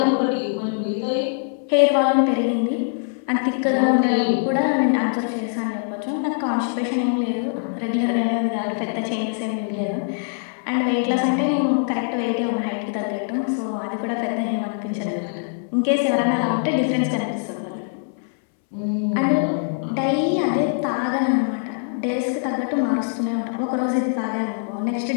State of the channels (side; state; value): right; silent; 64 dB below the other